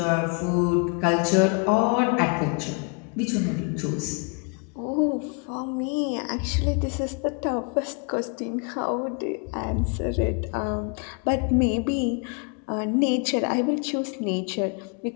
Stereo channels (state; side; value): quieter; right; 36.1 dB